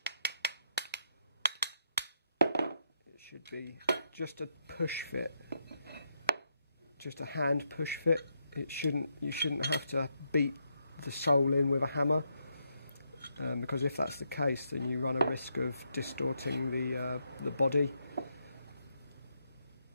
it should be just a push fit, just a hand push fit. You shouldn't have to beat the sole in with a hammer, because if that's the case, then you run a risk of distorting the body.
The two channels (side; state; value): both; inverted; correlation -0.79